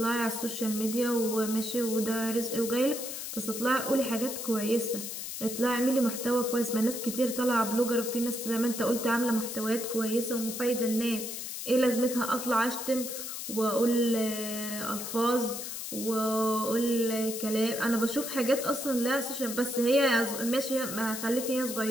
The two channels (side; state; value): left; noise; hiss, 6 dB below the sound